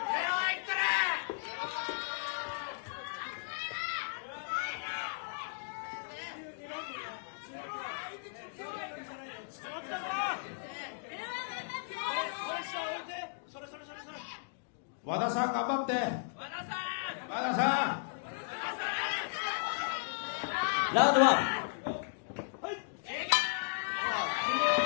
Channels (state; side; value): silent; right; digital silence